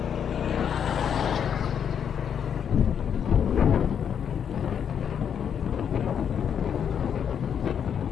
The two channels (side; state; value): right; quieter; 8.1 dB